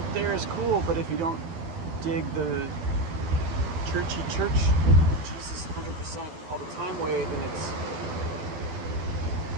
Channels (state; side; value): late; left; 12 ms